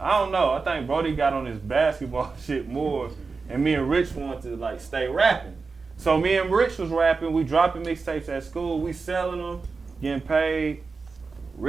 I don't know, I think Brody got on his basketball shit more, and me and Rich wanted to, like, stay rapping. So me and Rich was rapping, we dropping mixtapes at school, we selling them, getting paid.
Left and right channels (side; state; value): left; quieter; 4.5 dB